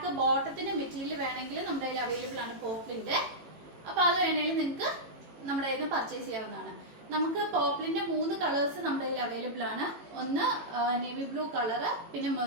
ബോട്ടത്തിൻ്റെ മെറ്റീരിയൽ വേണമെങ്കിൽ നമ്മുടെ കയ്യിൽ അവൈലബിൾ ആണ് പോപ്ലിൻ്റെ. അപ്പോൾ അത് വേണമെങ്കിൽ നിങ്ങൾക്ക് നമ്മുടെ കയ്യിൽ നിന്ന് പർച്ചേസ് ചെയ്യാവുന്നതാണ്. നമുക്ക് പോപ്ലിൻ്റെ 3 കളേഴ്സ് നമ്മുടെ കയ്യിൽ അവൈലബിൾ ആണ്. ഒന്ന് നേവി ബ്ലൂ കളറ്, പിന്നെ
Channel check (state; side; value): late; left; 18 ms